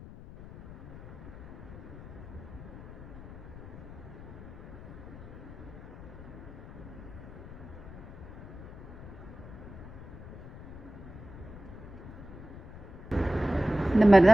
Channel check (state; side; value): noise; left; rumble, 14 dB below the sound